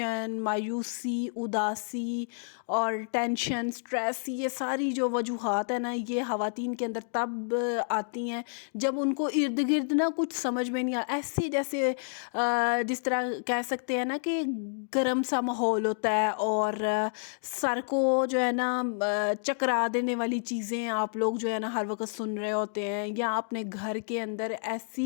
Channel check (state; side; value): silent; right; digital silence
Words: مایوسی، اداسی اور ٹینشن، سٹریس، یہ ساری جو وجوہات ہیں نا، یہ خواتین کے اندر تب آتی ہیں جب ان کو ارد گرد نا کچھ سمجھ میں نہیں ایسے جیسے جس طرح کہہ سکتے ہیں نا کہ گرم سا ماحول ہوتا ہے، اور سر کو جو ہے نا چکرا دینے والی چیزیں آپ لوگ جو ہے نا ہر وقت سن رہے ہوتے ہیں، یا اپنے گھر کے اندر ایسی